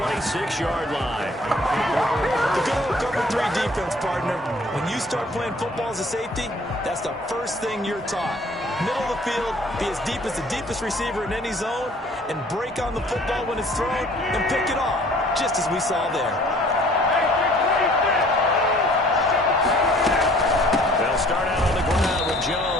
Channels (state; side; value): normal; both; correlation 0.55